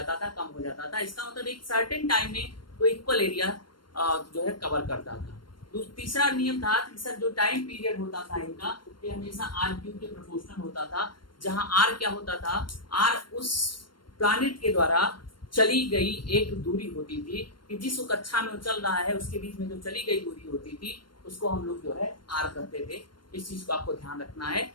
था कम हो जाता था। इसका मतलब एक सर्टेन टाइम में वो इक्वल एरिया जो है कवर करता था। तीसरा नियम था कि सर जो टाइम पीरियड होता था इनका ये हमेशा आर क्यूब के प्रोपोर्शनल होता था, जहां आर क्या होता था, आर उस प्लैनेट के द्वारा चली गई एक दूरी होती थी कि जिस कक्षा में वो चल रहा है उसके बीच में जो चली गई दूरी होती थी उसको हम लोग जो है आर कहते थे। इस चीज को आपको ध्यान रखना है।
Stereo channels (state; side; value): late; right; 0.72 ms